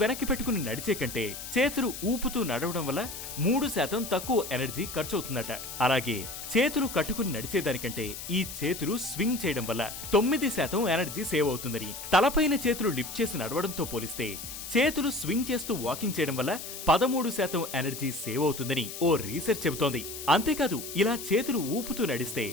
వెనక్కి పెట్టుకుని నడిచే కంటే చేతులు ఊపుతూ నడవడం వల్ల 3% తక్కువ ఎనర్జీ ఖర్చు అవుతుందట. అలాగే చేతులు కట్టుకుని నడిచేదానికంటే ఈ చేతులు స్వింగ్ చేయడం వల్ల 9% ఎనర్జీ సేవ్ అవుతుందని, తలపైన చేతులు లిఫ్ట్ చేసి నడవడంతో పోలిస్తే చేతులు స్వింగ్ చేస్తూ వాకింగ్ చేయడం వల్ల 13% ఎనర్జీ సేవ్ అవుతుందని ఓ రీసెర్చ్ చెబుతోంది. అంతేకాదు ఇలా చేతులు ఊపుతూ నడిస్తే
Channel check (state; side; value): noise; left; hiss, 9 dB below the sound